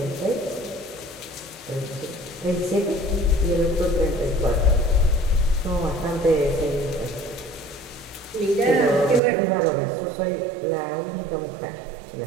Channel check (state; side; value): drops out; left; at 9.2 s